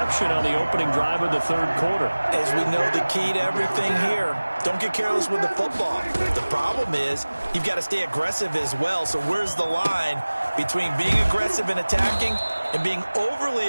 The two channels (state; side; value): inverted; both; correlation -1.00